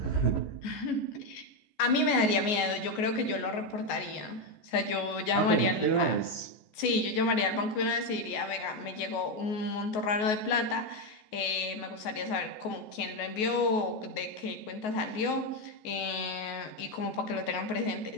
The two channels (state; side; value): late; right; 14 ms